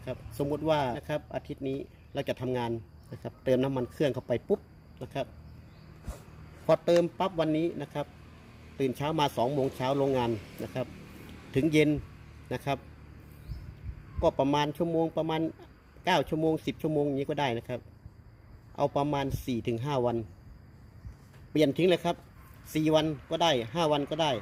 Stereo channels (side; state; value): both; identical; correlation 1.00